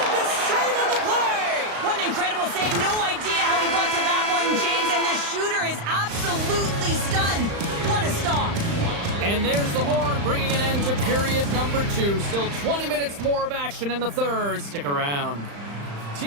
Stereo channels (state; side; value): late; left; 35 ms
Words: save on the play. What an incredible save. No idea how he got to that one, James, and the shooter is absolutely stunned. What a stop. And there's the horn, bringing an end to period number 2. Still 20 minutes more of action in the third. Stick around.